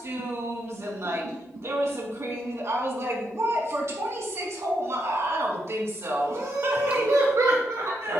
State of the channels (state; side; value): normal; both; correlation 0.80